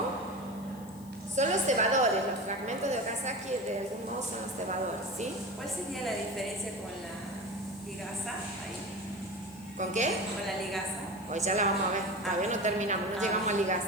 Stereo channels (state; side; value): noise; left; hiss, 22 dB below the sound